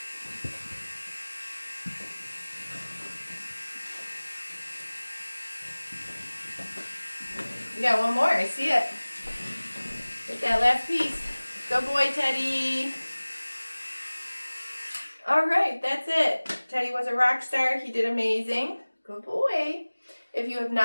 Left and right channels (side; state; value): both; inverted; correlation -1.00